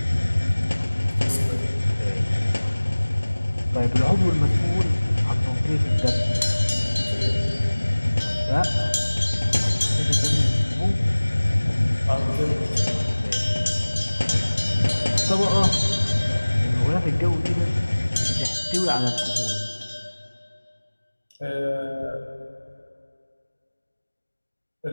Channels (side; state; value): both; inverted; correlation -1.00